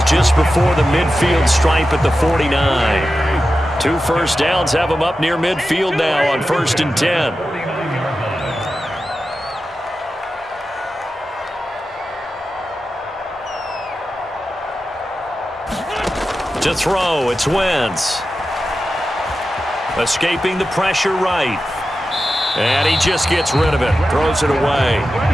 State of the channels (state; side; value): normal; both; correlation 0.92